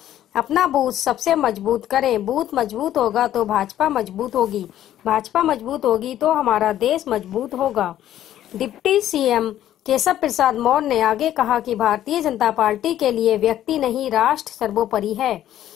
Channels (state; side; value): quieter; right; 12.1 dB